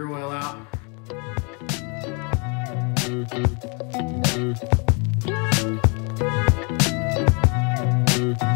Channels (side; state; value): right; quieter; 34.0 dB